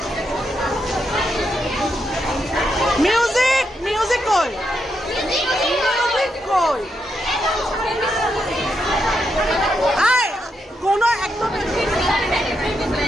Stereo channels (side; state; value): both; normal; correlation 0.82